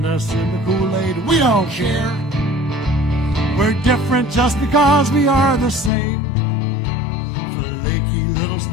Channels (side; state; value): right; drops out; at 5.9 s